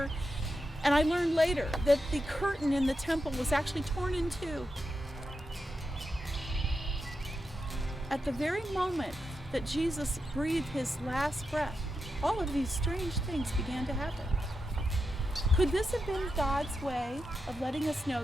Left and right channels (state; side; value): normal; both; correlation 0.87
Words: and I learned later that the curtain in the temple was actually torn in two. At the very moment that Jesus breathed his last breath, all of these strange things began to happen. Could this have been God's way of letting us know